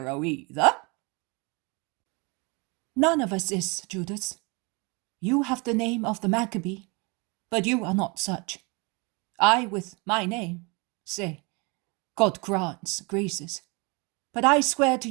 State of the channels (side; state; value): left; quieter; 29.5 dB